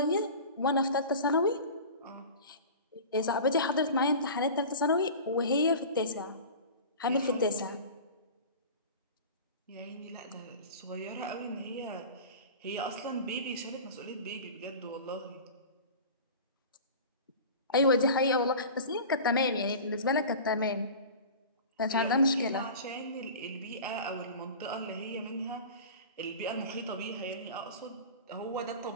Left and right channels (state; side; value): inverted; both; correlation -0.36